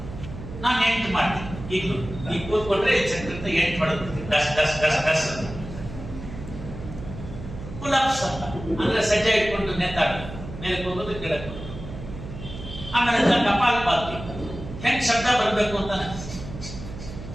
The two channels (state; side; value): noise; right; hum, 11 dB below the sound